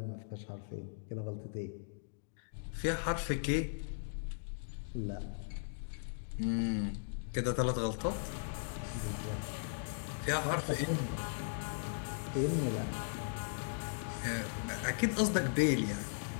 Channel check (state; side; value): silent; right; digital silence